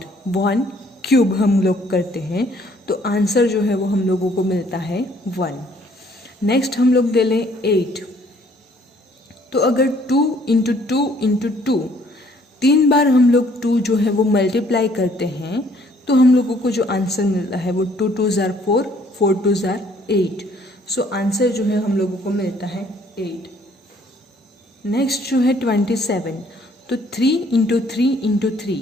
1 क्यूब हम लोग करते हैं तो आंसर जो है वो हम लोगों को मिलता है 1। नेक्स्ट हम लोग ले लें 8। तो अगर 2 इंटू 2 इंटू 2, 3 बार हम लोग 2 जो है वो मल्टीप्लाई करते हैं तो हम लोगों को जो आंसर मिलता है वो 2 2 ज़ार 4, 4 2 ज़ार 8। सो आंसर जो है हम लोगों को मिलता है 8। नेक्स्ट जो है 27। तो 3 इंटू 3 इंटू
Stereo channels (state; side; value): normal; both; correlation 0.62